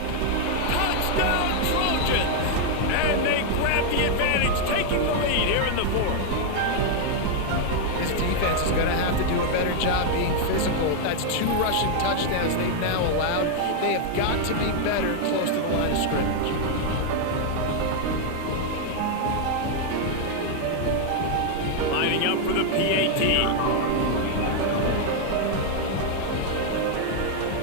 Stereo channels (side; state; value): both; different; correlation 0.00